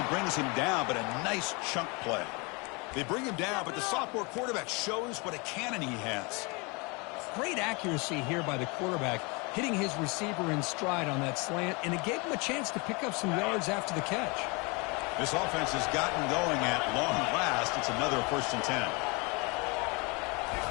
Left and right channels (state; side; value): quieter; right; 29.1 dB